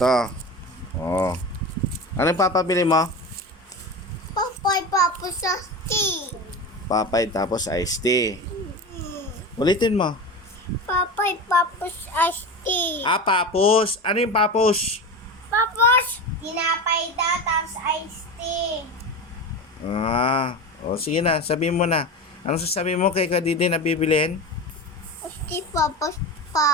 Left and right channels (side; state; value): both; normal; correlation 0.26